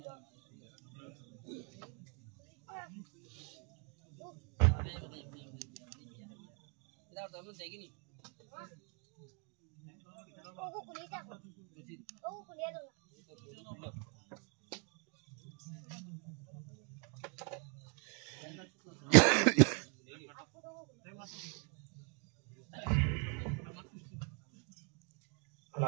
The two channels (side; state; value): left; quieter; 36.6 dB